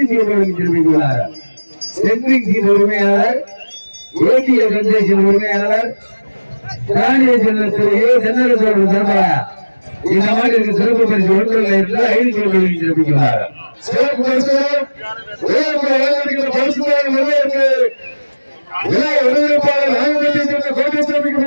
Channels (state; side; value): inverted; both; correlation -1.00